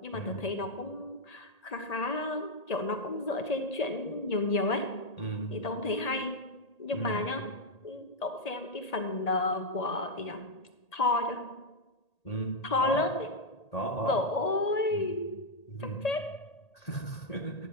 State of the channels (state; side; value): late; right; 1.8 ms